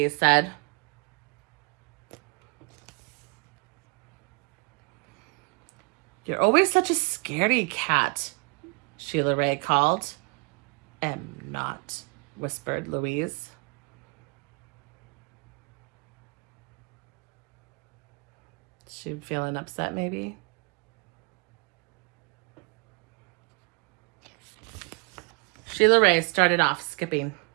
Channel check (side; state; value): left; quieter; 29.6 dB